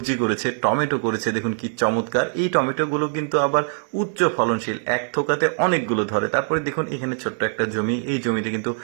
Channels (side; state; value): left; silent; digital silence